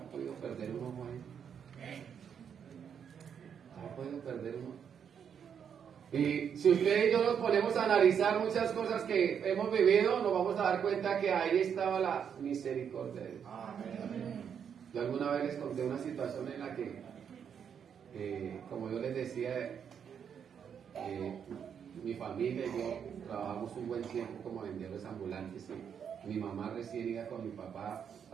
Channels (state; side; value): quieter; left; 7.7 dB